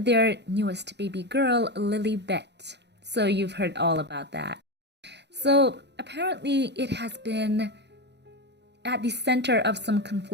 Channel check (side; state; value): left; late; 0.50 ms